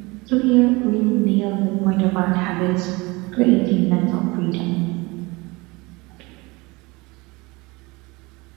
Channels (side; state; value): left; quieter; 24.2 dB